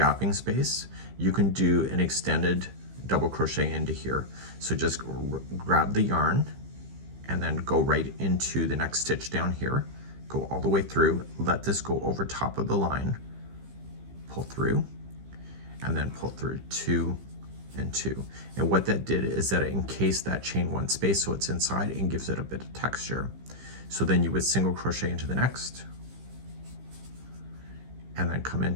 space, you can do an extended double crochet into here. So just grab the yarn and then go right into the next stitch down here, go all the way through, let this go over top of the line, pull through, and then pull through 2 and 2. And what that did is that it encased that chain 1 space so it's inside and gives it a bit of texture. So then you would single crochet into the next, and then come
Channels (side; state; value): left; late; 15 ms